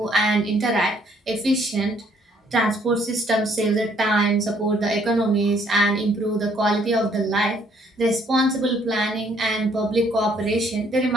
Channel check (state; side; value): normal; both; correlation 0.65